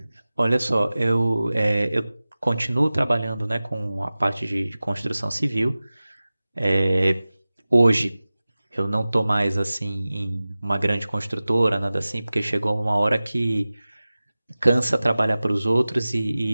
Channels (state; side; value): inverted; both; correlation -0.97